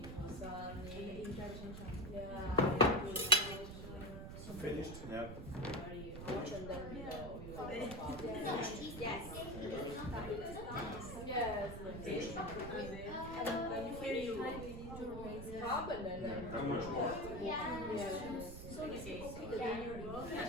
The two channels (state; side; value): noise; right; rumble, 9 dB below the sound